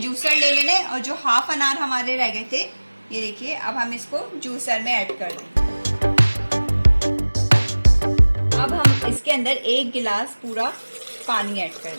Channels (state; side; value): inverted; both; correlation -1.00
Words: जूसर ले लेना है और जो हाफ अनार हमारे रह गए थे, ये देखिए, अब हम इसको जूसर में ऐड कर देंगे। अब हम इसके अंदर 1 गिलास पूरा पानी ऐड कर